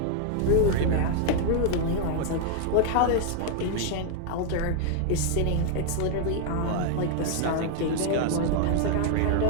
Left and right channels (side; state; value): both; different; correlation 0.00